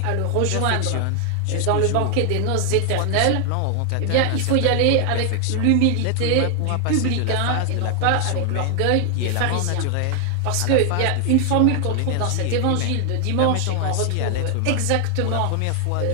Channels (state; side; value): different; both; correlation 0.00